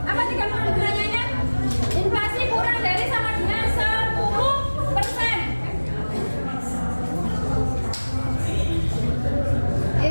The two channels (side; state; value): both; inverted; correlation -1.00